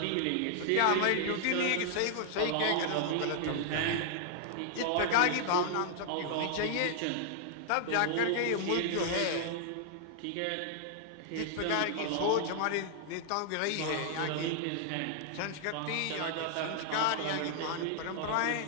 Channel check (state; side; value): different; both; correlation -0.01